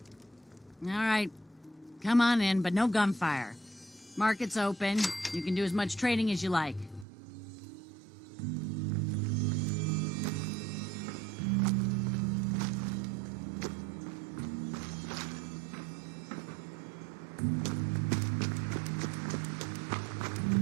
All right. Come on in, but no gunfire. Market's open. You can do as much trading as you like.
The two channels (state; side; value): drops out; left; at 7.1 s